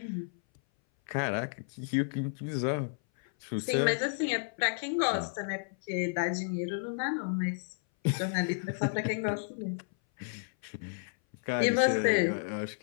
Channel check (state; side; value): silent; right; 57 dB below the other